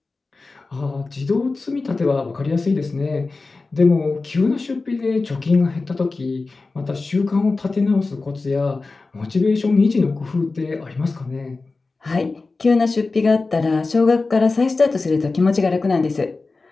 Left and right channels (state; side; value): quieter; right; 3.7 dB